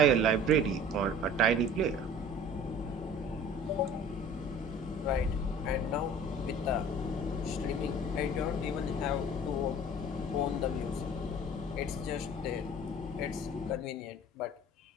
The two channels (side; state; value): both; normal; correlation 0.45